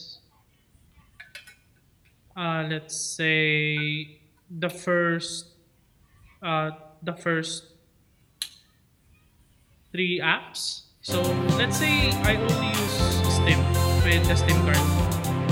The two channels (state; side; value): identical; both; correlation 1.00